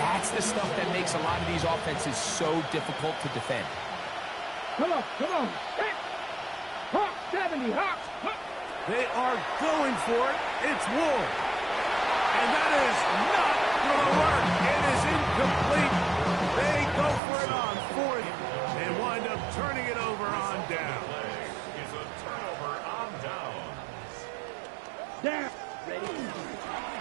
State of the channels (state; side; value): drops out; left; at 17.2 s